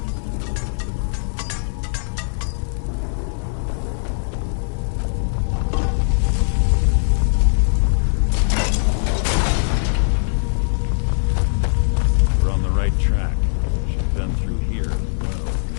We're on the right track. Should've been through here.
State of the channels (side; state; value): right; silent; 59 dB below the other